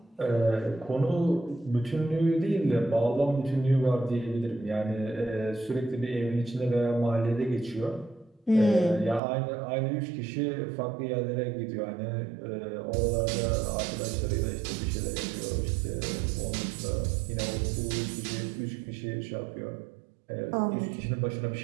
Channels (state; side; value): drops out; left; at 9.2 s